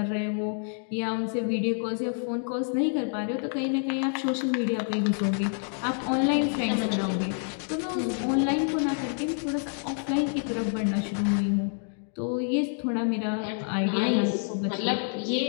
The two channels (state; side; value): silent; right; 60 dB below the other